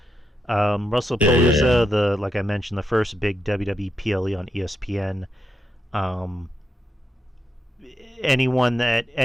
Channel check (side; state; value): both; normal; correlation 0.84